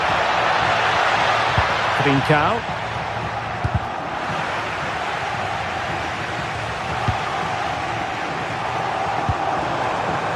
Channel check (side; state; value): both; identical; correlation 1.00